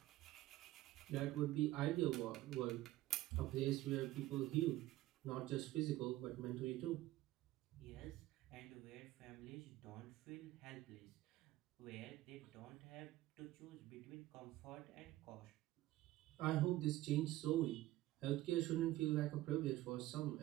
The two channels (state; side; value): quieter; left; 16.0 dB